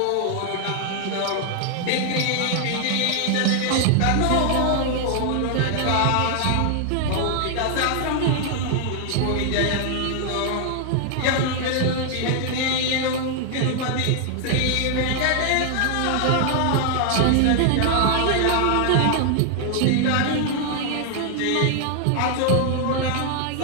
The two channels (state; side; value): different; both; correlation 0.00